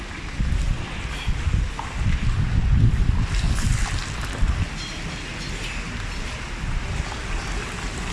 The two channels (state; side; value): identical; both; correlation 1.00